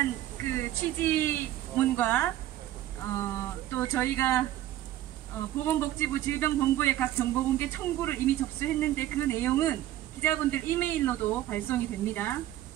그 취지문과 또 저희가 보건복지부 질병본부에 각 정보공개 청구를 이미 접수했는데 그 내용은 기자분들 이메일로도 발송이 됩니다.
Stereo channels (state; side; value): quieter; left; 13.8 dB